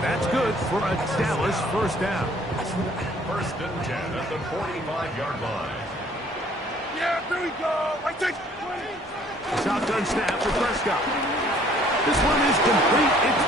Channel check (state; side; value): normal; both; correlation 0.58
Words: That's good for a Dallas first down. First and 10 at the 45-yard line. Yeah, there we go. I take 20. Shotgun snap for Prescott. This one is complete. It's